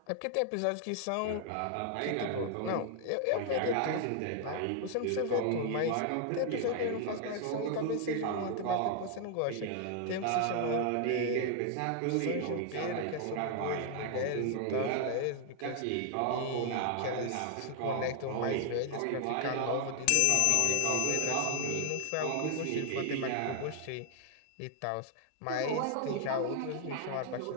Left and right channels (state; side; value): different; both; correlation 0.00